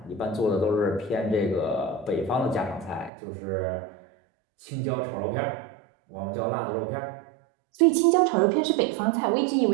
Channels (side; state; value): left; drops out; at 3.1 s